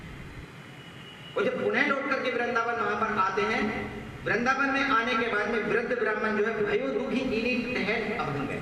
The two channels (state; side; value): identical; both; correlation 1.00